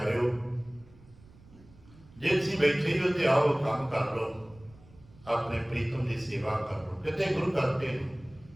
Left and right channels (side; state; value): right; noise; rumble, 24 dB below the sound